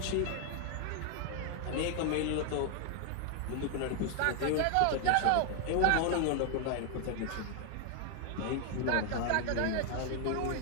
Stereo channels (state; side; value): different; both; correlation 0.00